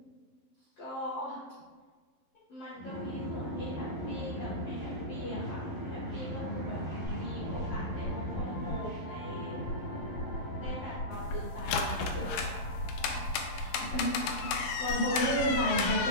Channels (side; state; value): right; late; 11 ms